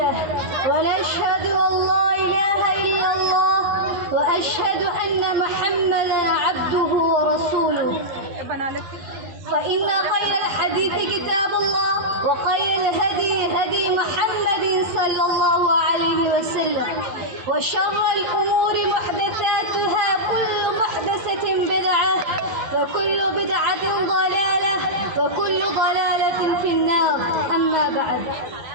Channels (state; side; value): late; left; 11 ms